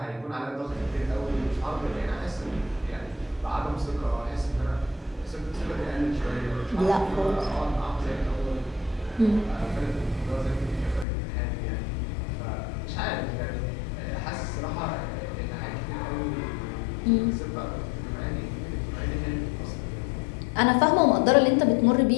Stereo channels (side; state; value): right; drops out; at 11.1 s